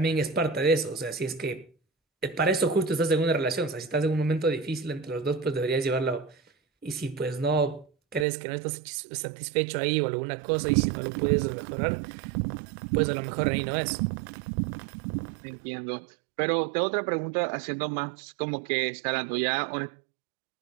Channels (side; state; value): left; drops out; at 8.2 s